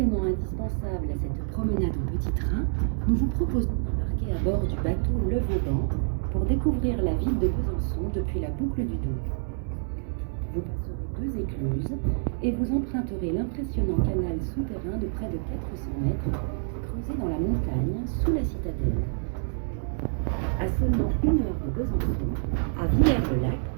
indispensable à cette promenade en petit train, nous vous proposons d'embarquer à bord du bateau Le Vauban pour découvrir la ville de Besançon depuis la boucle du Doubs. Vous passerez 2 écluses et vous emprunterez l'impressionnant canal souterrain de près de 400 mètres, creusé dans la montagne sous la citadelle. À seulement 1 heure de Besançon, à Villers-le-Lac,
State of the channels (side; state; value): left; silent; digital silence